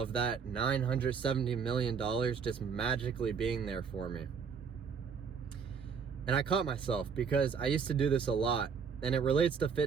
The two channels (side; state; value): left; quieter; 6.2 dB